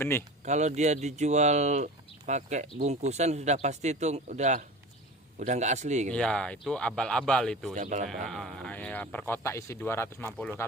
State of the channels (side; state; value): both; normal; correlation 0.34